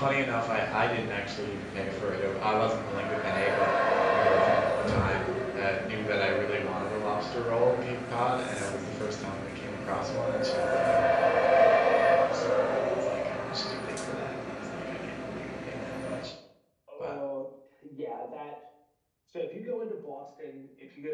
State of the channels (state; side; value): identical; both; correlation 1.00